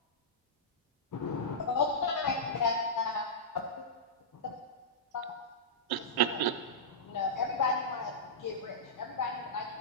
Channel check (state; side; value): normal; both; correlation -0.14